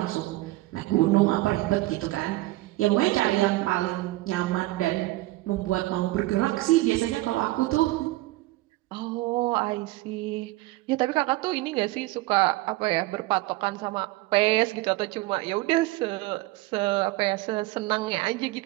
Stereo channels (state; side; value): quieter; left; 19.0 dB